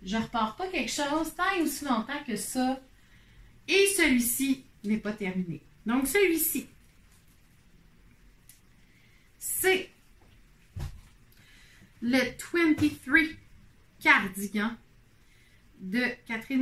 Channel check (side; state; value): both; identical; correlation 1.00